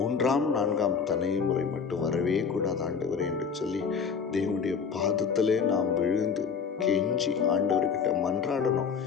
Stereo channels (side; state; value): right; quieter; 6.1 dB